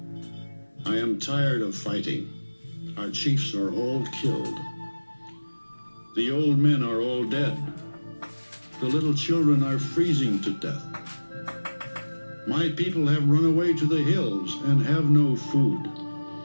"I am tired of fighting. Our chiefs are all killed. The old men are all dead. The little children are freezing to death. My people have run away to the hills and have no food.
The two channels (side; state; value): both; inverted; correlation -1.00